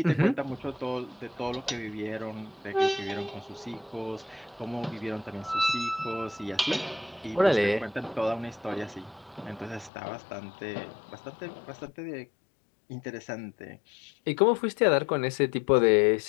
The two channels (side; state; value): right; drops out; at 9.9 s